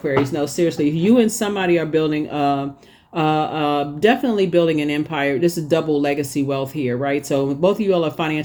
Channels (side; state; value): both; identical; correlation 1.00